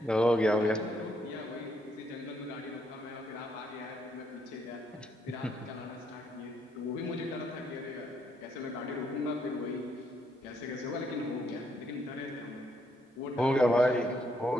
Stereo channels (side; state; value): both; normal; correlation 0.73